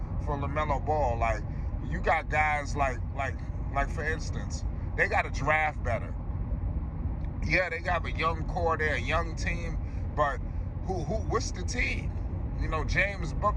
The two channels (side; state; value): both; identical; correlation 1.00